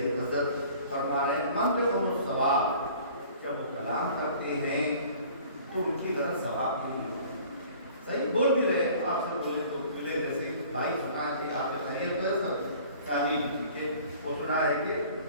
حضرت فرما رہے ہیں منطقہم الثواب، جب وہ کلام کرتے ہیں تو ان کی غرض ثواب نہیں ہوتی، صحیح بول بھی رہے ہیں، آپ سے بولے تو ملے جیسے بھائی سنا ہے آپ کے خیریت ہے سب تعلیم کہ وہ سنا ہے کہ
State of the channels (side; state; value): both; inverted; correlation -0.49